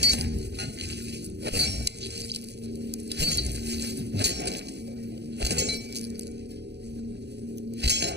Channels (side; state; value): left; late; 0.49 ms